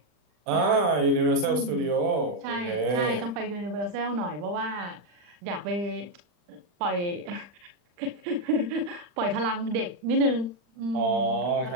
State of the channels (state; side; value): late; left; 40 ms